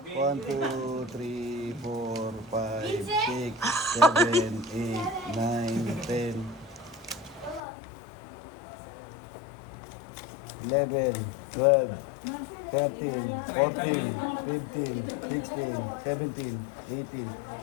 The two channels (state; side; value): drops out; right; at 7.6 s